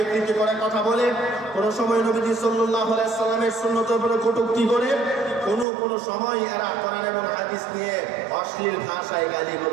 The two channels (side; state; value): left; drops out; at 5.7 s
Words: করে কথা বলে, কোন সময় নবীজি সাল্লাল্লাহু আলাইহি সাল্লামের সুন্নতের উপরে কটূক্তি করে, কোন সময় এরা কোরআন এবং হাদিস নিয়ে অশ্লীল ভাষায়